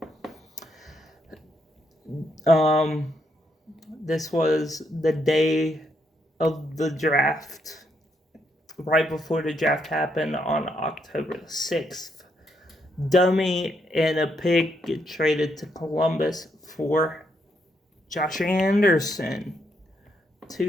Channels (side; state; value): both; normal; correlation 0.77